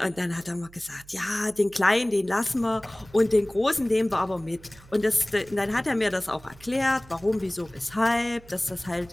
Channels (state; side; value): noise; right; hum, 23 dB below the sound